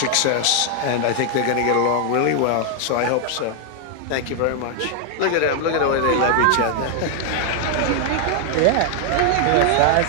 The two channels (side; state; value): both; different; correlation 0.00